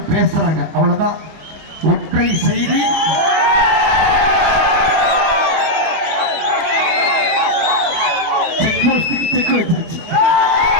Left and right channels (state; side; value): late; left; 25 ms